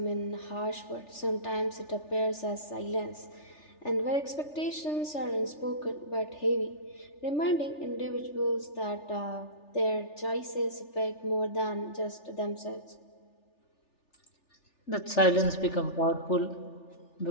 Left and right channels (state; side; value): late; right; 3.4 ms